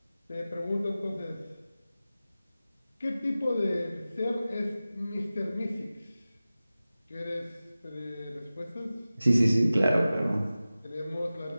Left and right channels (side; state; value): both; inverted; correlation -0.96